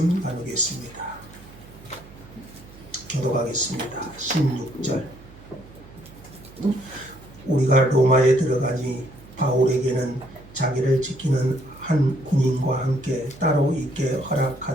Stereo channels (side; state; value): right; noise; hum, 21 dB below the sound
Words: 나누겠습니다. 교독하겠습니다. 16절. 우리가 로마에 들어가니 바울에게는 자기를 지키는 한 군인과 함께 따로 있게